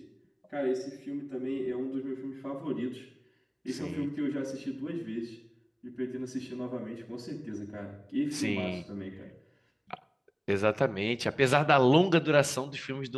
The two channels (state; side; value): identical; both; correlation 1.00